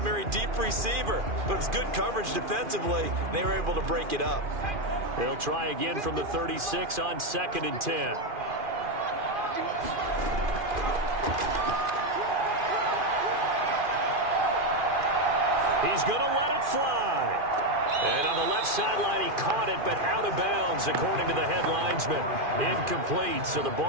deep receiver. But it was good coverage defensively, and they were able to break it up. They'll try again from the 36 on 2nd and 10. He's going to let it fly. And on the left sideline, he caught it, but out of bounds, according to the head linesman. Incomplete, so the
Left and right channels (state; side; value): late; left; 2.4 ms